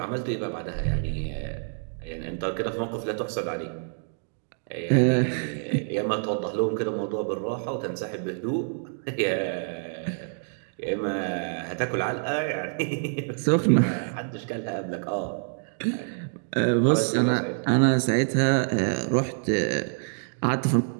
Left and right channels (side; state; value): left; silent; digital silence